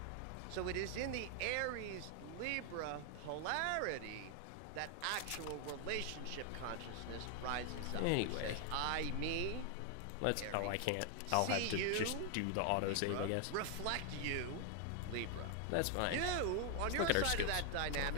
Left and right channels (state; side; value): different; both; correlation 0.00